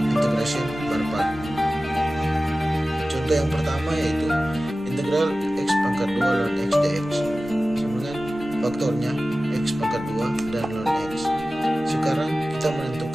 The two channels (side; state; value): both; normal; correlation 0.96